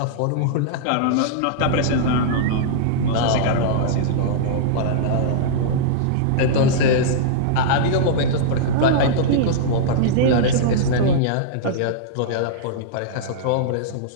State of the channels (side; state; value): both; different; correlation -0.02